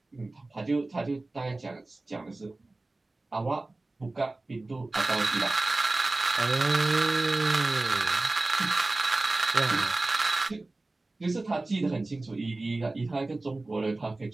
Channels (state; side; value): quieter; left; 3.1 dB